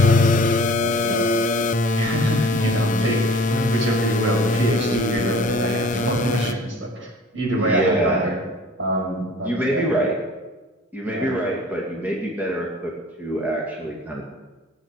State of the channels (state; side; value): normal; both; correlation 0.48